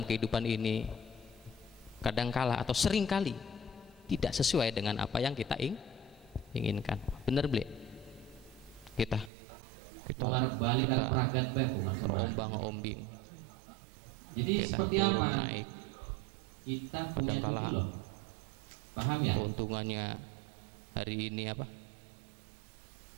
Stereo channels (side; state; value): left; drops out; at 9.3 s